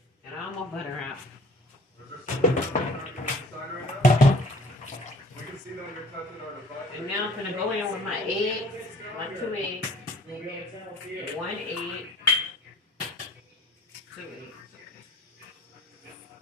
Got all my butter out. We can see that you're touching our device. And now I'm gonna go in with my eggs, my 2 eggs, We'll be able to tell if you. 1 egg, 2 eggs.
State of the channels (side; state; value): both; normal; correlation 0.50